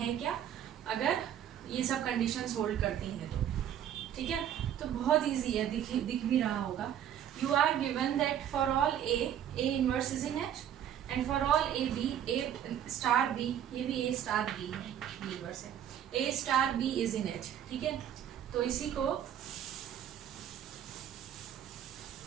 क्या, अगर ये सब कंडीशंस होल्ड करती हैं तो, ठीक है. तो बहुत इजी है, दिख भी रहा होगा. You are given that for all A inverse is in H and for all AB A star B, ये भी A स्टार B है, इनवर्स है, A star B is in H, ठीक है. तो इसी को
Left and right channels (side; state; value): left; quieter; 10.1 dB